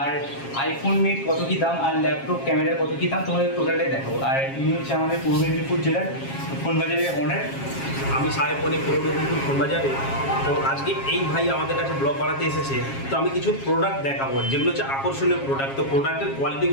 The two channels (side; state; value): right; late; 7.4 ms